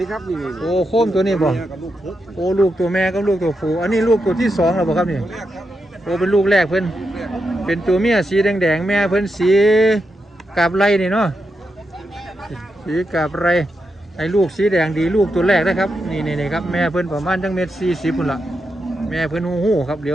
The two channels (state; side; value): normal; both; correlation 0.85